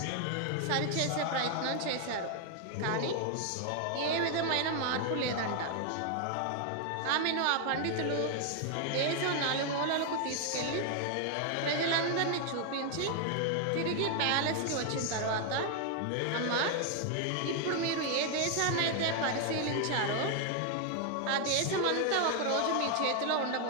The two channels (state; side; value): different; both; correlation 0.00